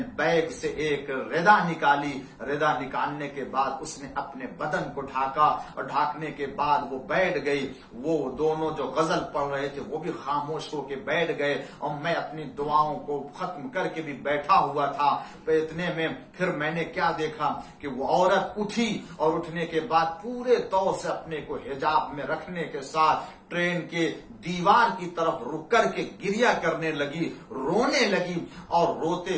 بیگ سے ایک ردا نکالی. ردا نکالنے کے بعد اس نے اپنے بدن کو ڈھاکا، اور ڈھانکنے کے بعد وہ بیٹھ گئی. وہ دونوں جو غزل پڑھ رہے تھے وہ بھی خاموش ہو کے بیٹھ گئے، اور میں اپنی دعاؤں کو ختم کر کے بھی بیٹھا ہوا تھا. اتنے میں پھر میں نے کیا دیکھا کہ وہ عورت اٹھی، اور اٹھنے کے بعد پورے طور سے اپنے کو حجاب میں رکھنے کے ساتھ ٹرین کے دیوار کی طرف رک کر کے گریہ کرنے لگی، رونے لگی. اور روتے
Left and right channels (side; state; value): both; identical; correlation 1.00